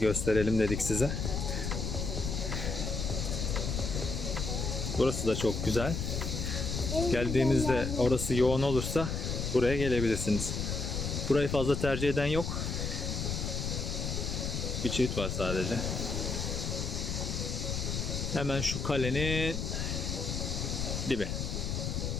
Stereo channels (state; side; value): noise; left; rumble, 2 dB below the sound